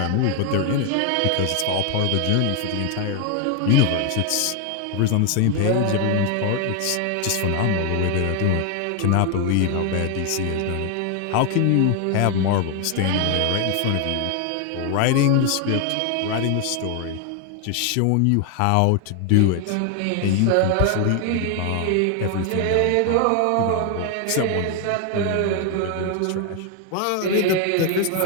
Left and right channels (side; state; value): both; different; correlation 0.00